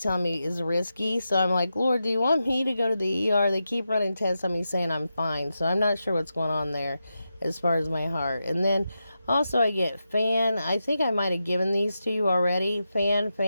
telling me is risky. So I'm like, Lord, do you want me to go to the ER? They keep running tests on me saying I'm fine. So I'm not sure what's going on there as far as my heart. And then also I get fan. I think I might have given these to you already. Fan.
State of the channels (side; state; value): both; inverted; correlation -0.89